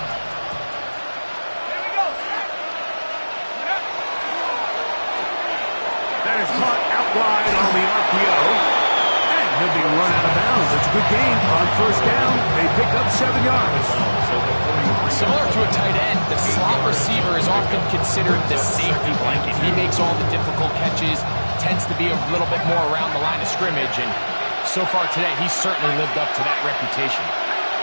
Wide on the RPO, and he'll be run out of bounds. It's a good gain on 1st down. They pick up 7 yards. Similar to a tight end, the slot receiver is often considered the safety blanket. He makes all the difficult catches, tends to be a little bit more around the line of scrimmage, and so far today, he's certainly lived up to that reputation.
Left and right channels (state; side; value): inverted; both; correlation -1.00